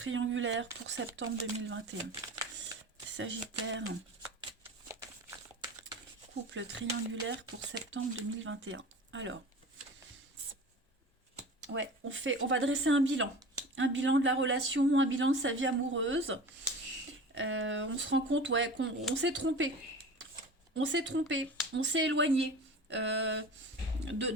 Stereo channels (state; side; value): normal; both; correlation 0.36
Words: triangulaire pour septembre 2021. Sagittaire. Couple triangulaire pour septembre 2021. Alors, ouais, on va dresser un bilan. Un bilan de la relation, un bilan de sa vie amoureuse. On se rend compte, ouais, qu'on s'est trompé. On s'est trompé, on s'est éloigné